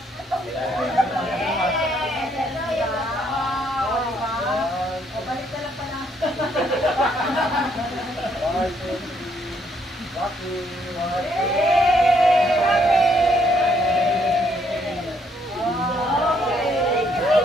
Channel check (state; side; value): normal; both; correlation 0.70